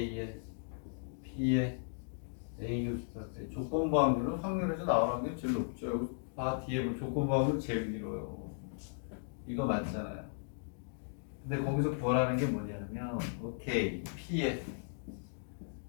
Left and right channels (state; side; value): silent; right; digital silence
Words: P의 A 교수한테 조건부 확률은 확률에서 나오는 게 제일 높죠. 여기 봐 뒤에 보면 조건부 확률 제일 길어요. 이거 맞잖아요. 근데 거기서 구하라는 게 뭐냐면 오케이 P의